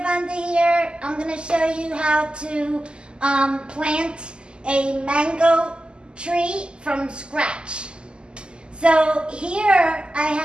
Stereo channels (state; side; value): late; left; 0.049 ms